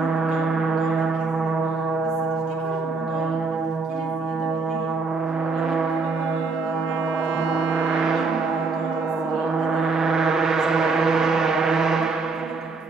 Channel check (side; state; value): left; quieter; 4.1 dB